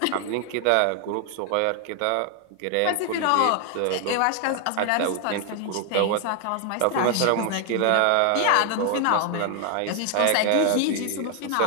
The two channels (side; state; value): both; different; correlation 0.00